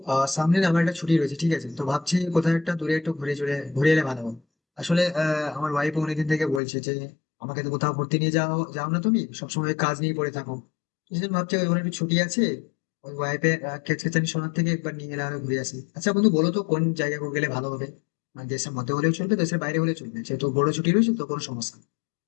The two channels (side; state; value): right; drops out; at 6.6 s